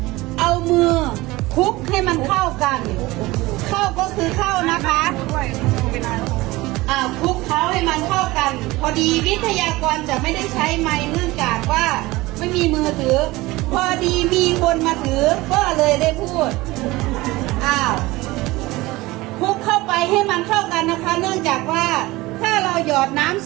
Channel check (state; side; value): quieter; left; 20.2 dB